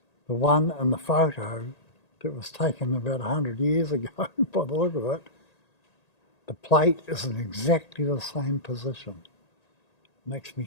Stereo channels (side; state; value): right; late; 1.8 ms